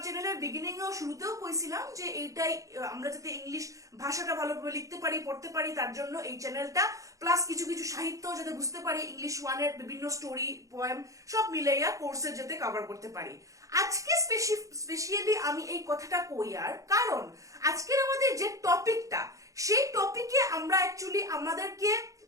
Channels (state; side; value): late; left; 0.16 ms